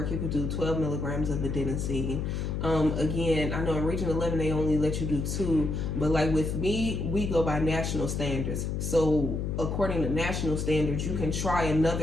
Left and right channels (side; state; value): left; noise; hum, 1 dB below the sound